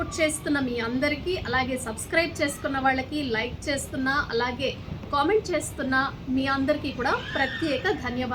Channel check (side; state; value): both; identical; correlation 1.00